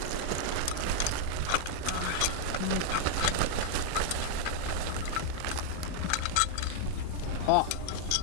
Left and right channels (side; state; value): both; different; correlation 0.00